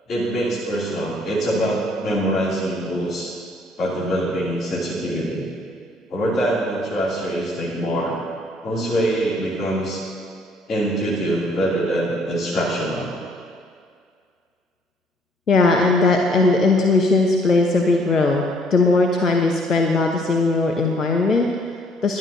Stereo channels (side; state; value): both; normal; correlation 0.63